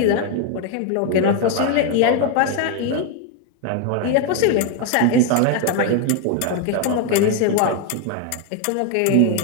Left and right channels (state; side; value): different; both; correlation 0.01